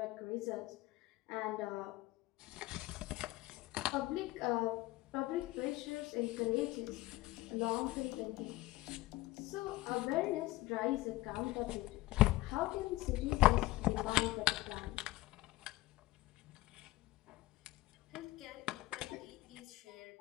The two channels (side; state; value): right; quieter; 18.6 dB